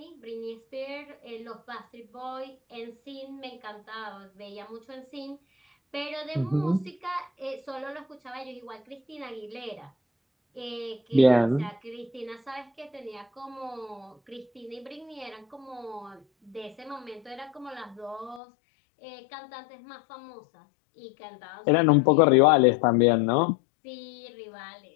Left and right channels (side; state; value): right; drops out; at 18.4 s